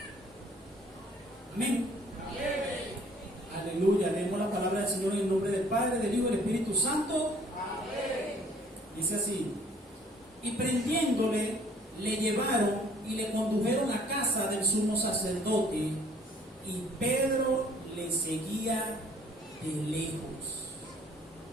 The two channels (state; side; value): normal; both; correlation 0.58